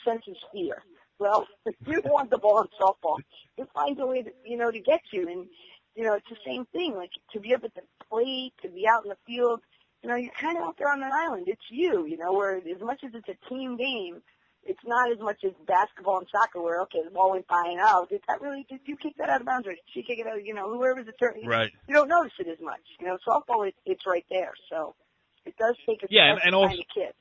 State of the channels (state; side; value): identical; both; correlation 1.00